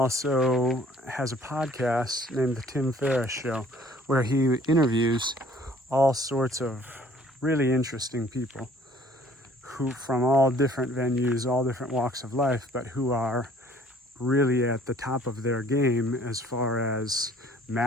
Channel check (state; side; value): normal; both; correlation 0.56